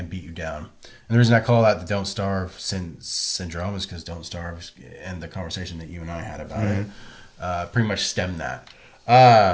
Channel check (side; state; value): both; identical; correlation 1.00